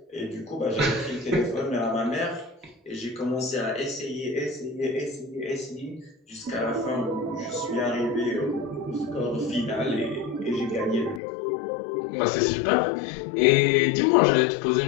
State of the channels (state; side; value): drops out; right; at 11.2 s